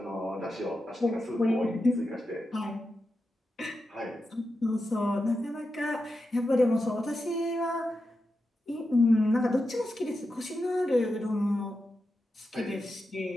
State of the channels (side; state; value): both; normal; correlation 0.89